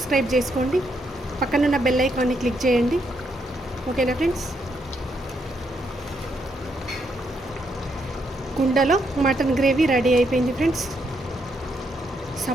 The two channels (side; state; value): both; normal; correlation 0.77